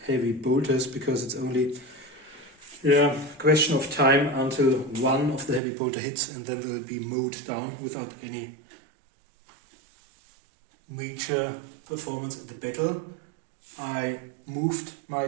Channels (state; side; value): drops out; left; at 5.6 s